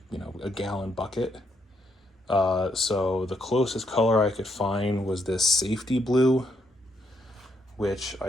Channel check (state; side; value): normal; both; correlation 0.76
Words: gallon bucket. So the closest color I could find was this safety blue, which